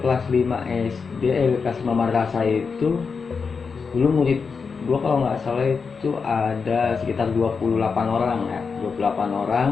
kelas 5 SD, kelas 5 madrasah itu. Dulu murid gue kalau nggak salah itu ada sekitar 28 orang ya, 28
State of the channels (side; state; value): right; quieter; 5.3 dB